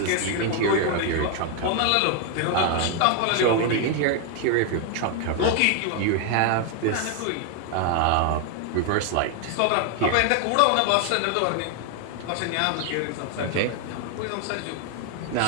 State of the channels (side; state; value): both; different; correlation 0.00